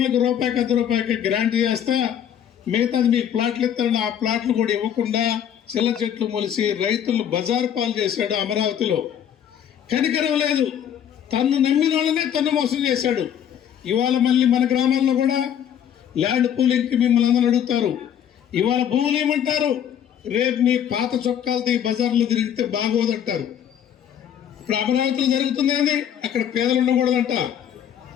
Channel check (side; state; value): right; quieter; 9.5 dB